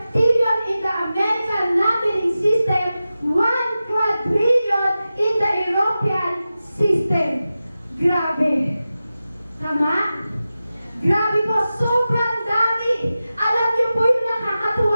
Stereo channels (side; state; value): both; inverted; correlation -0.94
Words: in the American Latin system, 1 quadrillion in the European system. Grabe. Tama? Grabe po, sobrang dami. Alam niyo po yung